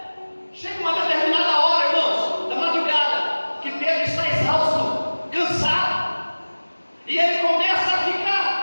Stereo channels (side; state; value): both; inverted; correlation -1.00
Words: Chega uma determinada hora, irmãos, da madrugada, que Pedro está exausto, cansado, e ele começa a